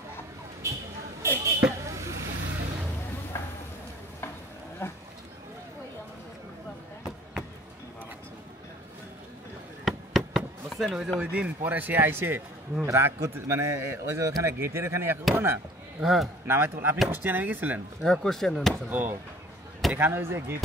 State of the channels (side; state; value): both; normal; correlation 0.50